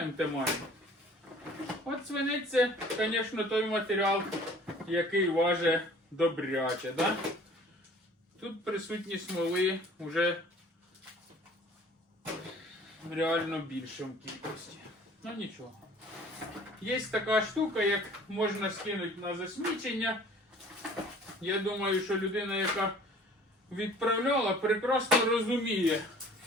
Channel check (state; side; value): normal; both; correlation 0.50